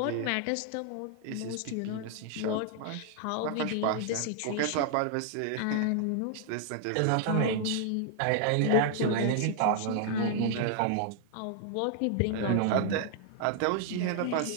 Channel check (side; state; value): both; different; correlation 0.00